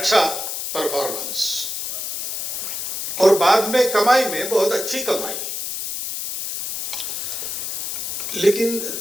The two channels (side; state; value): left; noise; hiss, 4 dB below the sound